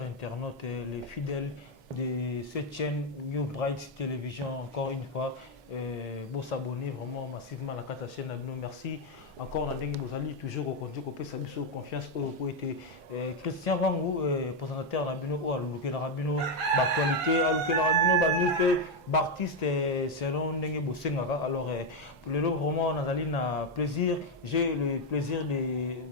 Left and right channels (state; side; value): normal; both; correlation 0.05